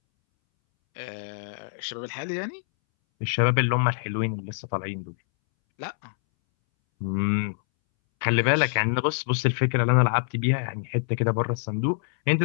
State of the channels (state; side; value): silent; right; 61 dB below the other